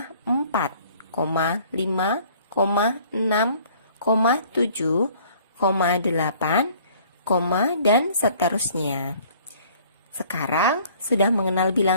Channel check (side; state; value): both; inverted; correlation -0.55